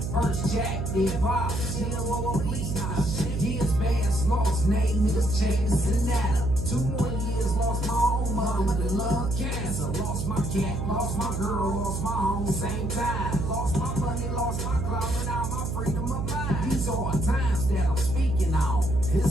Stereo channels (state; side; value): noise; right; hum, 3 dB below the sound